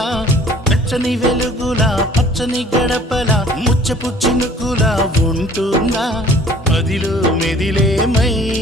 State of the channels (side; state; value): both; normal; correlation 0.53